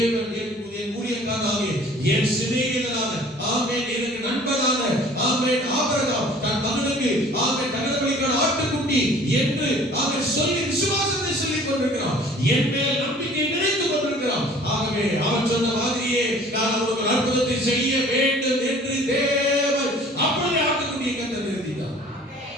என் ஊழியக்காரனாக, என் சிநேகிதனான, ஆமென், எனக்கு நண்பனான, ஆமென், ஆபிரகாம் தன் மகனுக்கு, ஆமென், தகன பலிக்கான ஆட்டுக்குட்டி என்று அவன் சொல்லி விசுவாசத்தை சொல்லிக் கொண்டிருக்கிறான். என் மேல் நம்பிக்கை நினைத்துக் கொண்டிருக்கிறான். ஆகவே அவன் சொன்ன மாதிரியே நான் அவனுக்கு ஒரு அற்புதத்தை செய்ய வேண்டும் என்று தேவன் அப்படியே ஆட்டுக்குட்டியை கர்த்தர் நிறுத்தினார்.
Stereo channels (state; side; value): normal; both; correlation 0.50